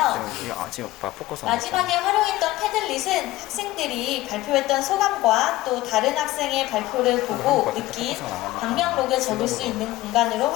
지금 포커스 마지막에 활용했던 패들릿은 학생들이 발표했던 소감과 또 다른 학생의 발표를 보고 느낀 방명록을 적을 수 있는 공간으로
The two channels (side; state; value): right; quieter; 17.1 dB